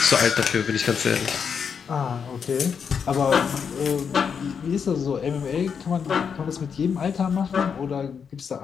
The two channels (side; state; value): right; quieter; 6.7 dB